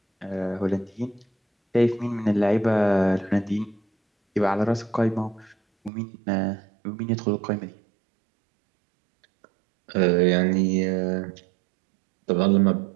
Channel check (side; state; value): left; drops out; at 5.9 s